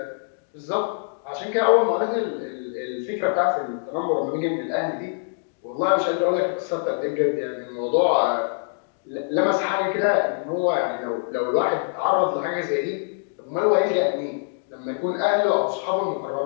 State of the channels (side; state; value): right; silent; digital silence